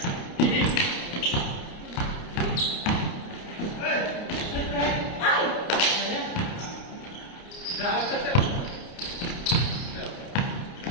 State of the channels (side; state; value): right; late; 29 ms